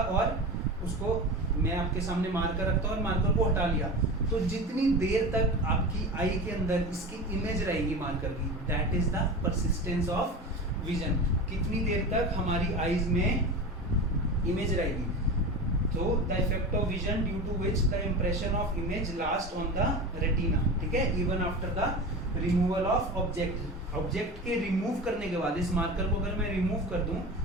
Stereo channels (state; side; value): normal; both; correlation 0.29